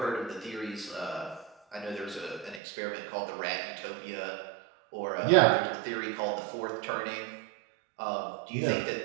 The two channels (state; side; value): drops out; left; at 2.6 s